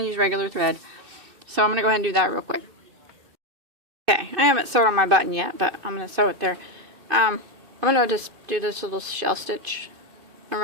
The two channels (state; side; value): late; left; 2.6 ms